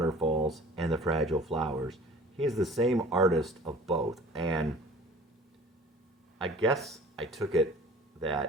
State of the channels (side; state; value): both; normal; correlation 0.46